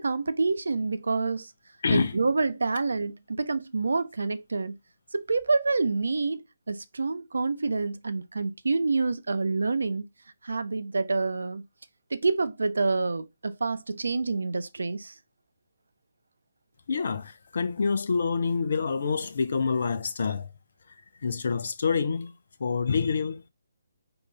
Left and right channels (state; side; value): inverted; both; correlation -0.88